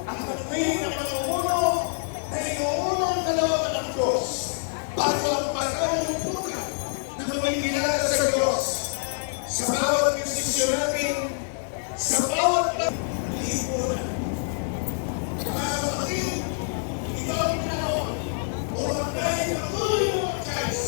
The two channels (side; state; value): right; silent; 58 dB below the other